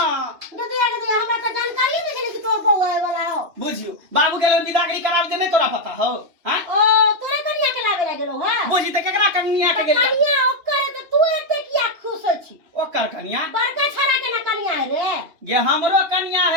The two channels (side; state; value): left; late; 2.8 ms